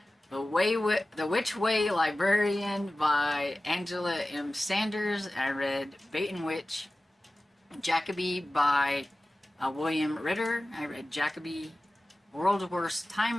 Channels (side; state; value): both; normal; correlation 0.96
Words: The Which Way Librarian by Angela M. Sanders. I read Bait and Witch. Jacoby by William Ritter. I read Jacoby. World's Worst Time